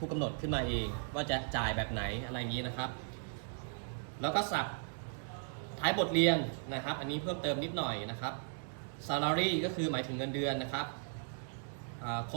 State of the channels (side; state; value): left; silent; digital silence